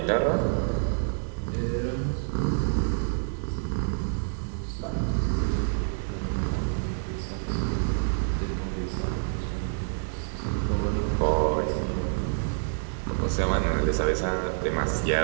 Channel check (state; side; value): silent; left; digital silence